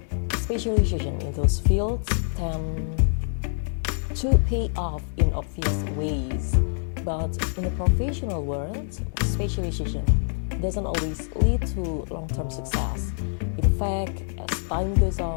Specialization in those fields tend to pay off in obvious ways, but in the professional world, specialization doesn't always lead to long-term success. In fact, as time goes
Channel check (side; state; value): right; silent; 61 dB below the other